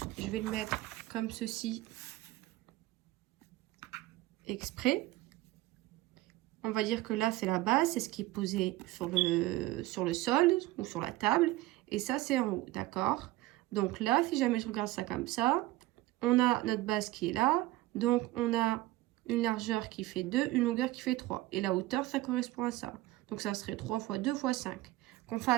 je vais le mettre comme ceci, exprès. On va dire que là, c'est la base, c'est ce qui est posé sur le sol ou sur la table. Et ça, c'est en haut, d'accord? Donc là, si jamais je regarde ça comme ça, on a notre base qui est là. Donc, on a une largeur qui fait 2, une longueur qui fait 3. Et la hauteur, ça correspond à ça. Donc, ça serait 3 fois 2 fois 5. Qu'on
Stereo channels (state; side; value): quieter; left; 17.6 dB